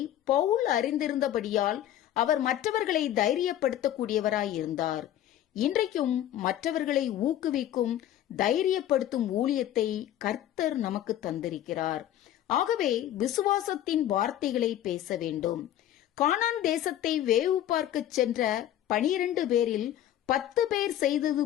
பவுல் அறிந்திருந்தபடியால் அவர் மற்றவர்களை தைரியப்படுத்தக்கூடியவராயிருந்தார். இன்றைக்கும் மற்றவர்களை ஊக்குவிக்கும் தைரியப்படுத்தும் ஊழியத்தை கர்த்தர் நமக்கு தந்திருக்கிறார். ஆகவே விசுவாசத்தின் வார்த்தைகளை பேச வேண்டும். கானான் தேசத்தை வேவு பார்க்க சென்ற 12 பேரில் 10 பேர் செய்தது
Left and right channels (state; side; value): quieter; right; 12.0 dB